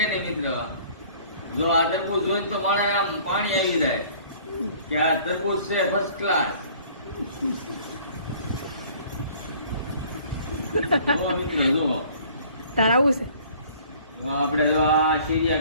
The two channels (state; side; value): inverted; both; correlation -0.53